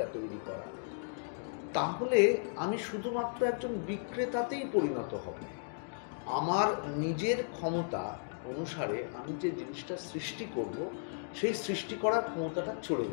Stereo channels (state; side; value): silent; right; digital silence